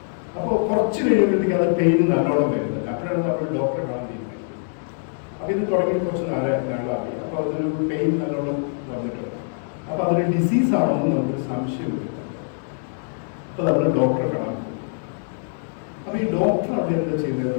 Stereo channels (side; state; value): right; silent; digital silence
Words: അപ്പോൾ കുറച്ച് കഴിയുമ്പോഴത്തേക്ക് അത് പെയിൻ നല്ലോണം വരുന്നത്. അപ്പോഴാണ് നമ്മൾ ഡോക്ടറെ കാണാൻ തീരുമാനിക്കുന്നത്. അപ്പോൾ ഇത് തുടങ്ങി കുറച്ച് നാളായി. അപ്പോൾ അതൊരു പെയിൻ നല്ലോണം വന്നിട്ടുണ്ട്. അപ്പോൾ അതൊരു ഡിസീസാണെന്ന് നമുക്കൊരു സംശയം വരും. അപ്പോൾ നമ്മൾ ഡോക്ടറെ കാണാൻ പോകും. അപ്പോൾ ഈ ഡോക്ടർ അവിടെ എന്താ